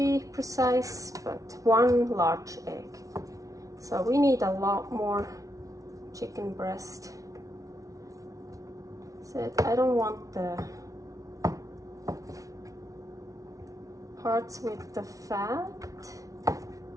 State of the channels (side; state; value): left; late; 0.17 ms